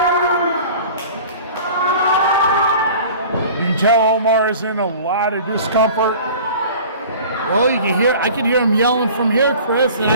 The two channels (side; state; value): both; inverted; correlation -0.43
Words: Tell Omar is in a lot of discomfort. Well, I can hear him yelling from here, Chris, and